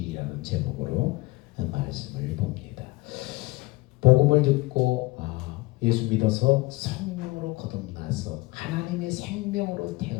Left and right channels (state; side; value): quieter; right; 21.9 dB